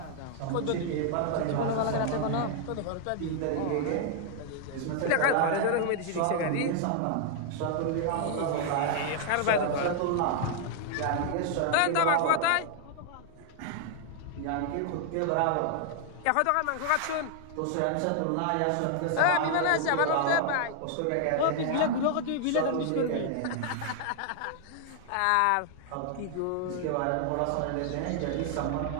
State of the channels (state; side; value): different; both; correlation 0.00